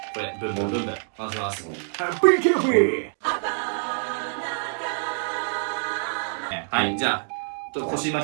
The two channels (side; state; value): left; silent; digital silence